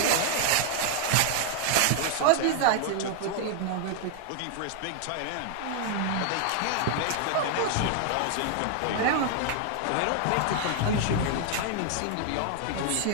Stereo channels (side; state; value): both; different; correlation 0.00